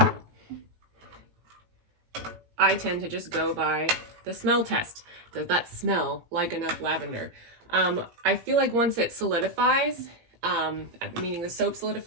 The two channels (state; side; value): late; left; 17 ms